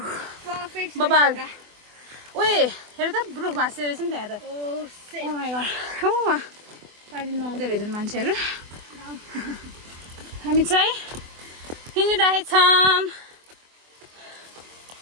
बबाल ओए हेर त रुख भाँच्दो रहेछ नि त्यहाँ त ओ माई गड पानी नुहाउँदै रहेछन् मान्छेहरू हामी चाहिँ हिँडिरहेछौँ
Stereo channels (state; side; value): late; left; 24 ms